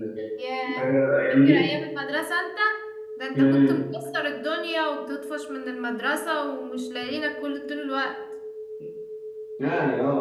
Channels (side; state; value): both; identical; correlation 1.00